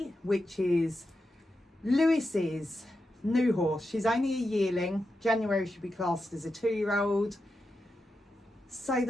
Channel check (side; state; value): both; normal; correlation 0.88